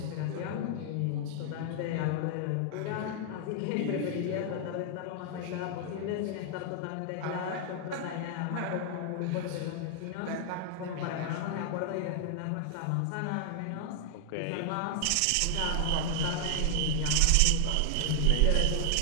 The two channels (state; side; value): different; both; correlation 0.00